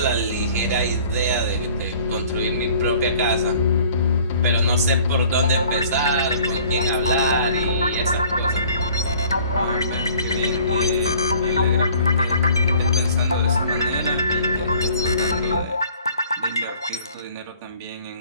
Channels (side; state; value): both; inverted; correlation -0.53